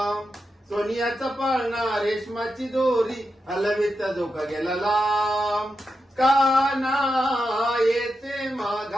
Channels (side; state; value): both; normal; correlation 0.88